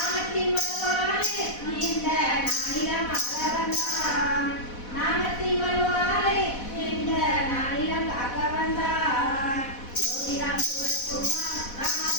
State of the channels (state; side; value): late; right; 4.1 ms